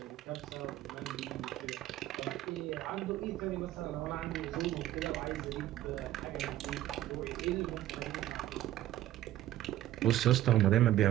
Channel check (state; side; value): quieter; left; 13.6 dB